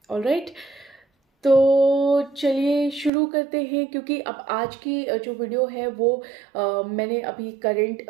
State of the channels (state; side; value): drops out; left; at 3.1 s